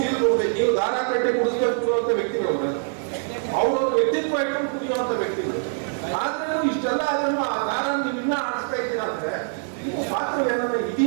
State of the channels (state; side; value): silent; left; 63 dB below the other